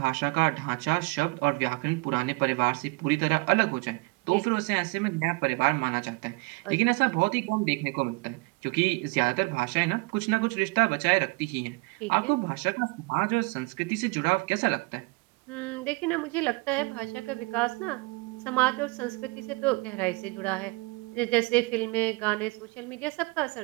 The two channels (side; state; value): left; quieter; 27.5 dB